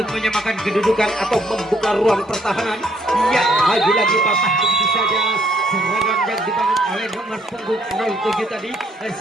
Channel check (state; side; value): normal; both; correlation 0.67